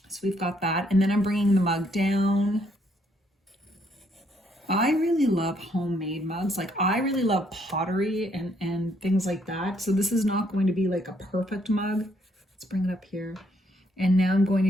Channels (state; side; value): normal; both; correlation 0.70